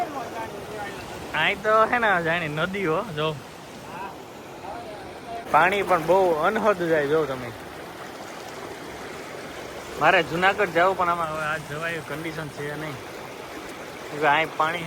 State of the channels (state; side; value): identical; both; correlation 1.00